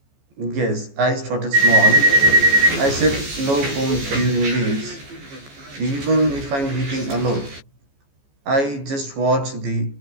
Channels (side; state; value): left; late; 14 ms